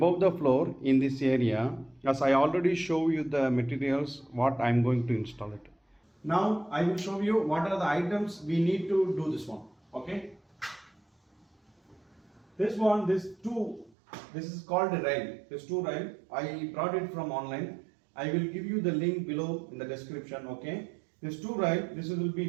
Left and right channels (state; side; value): drops out; left; at 14.0 s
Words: the floor in this area, as I already show you the materials what I am going to install it. Now I will show you what are the items we need to do this one. Okay, this is called a rail. This two rail I brought it from online. I will give you the link below in the description. Okay, this two rail, this will